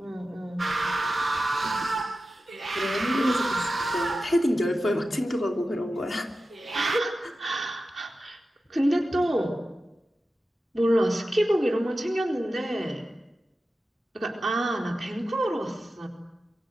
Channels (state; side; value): normal; both; correlation 0.93